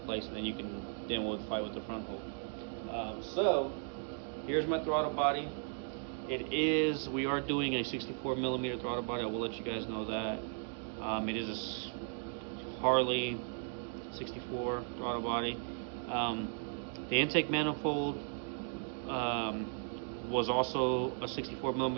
place, and then you can fight with the front hold. So here's my throttle body. We are doing a 64 millimeter throttle body. I will let you guys know that. It is a Harley 64 throttle body. The intake manifold was also a 64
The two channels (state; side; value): silent; left; 54 dB below the other